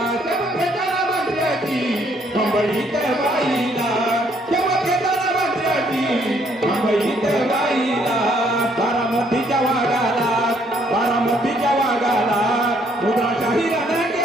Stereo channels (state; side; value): normal; both; correlation 0.67